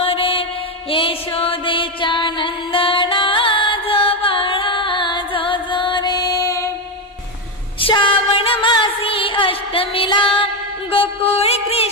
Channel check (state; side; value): normal; both; correlation 0.09